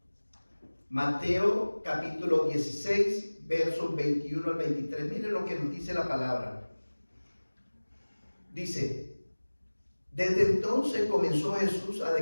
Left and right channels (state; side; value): inverted; both; correlation -1.00